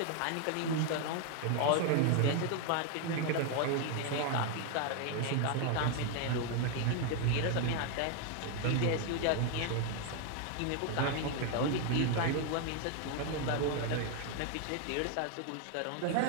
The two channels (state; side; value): different; both; correlation 0.01